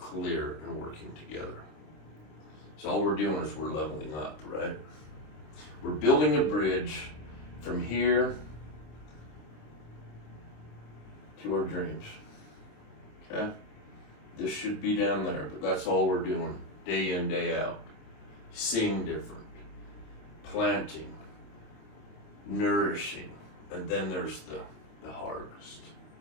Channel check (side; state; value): right; late; 27 ms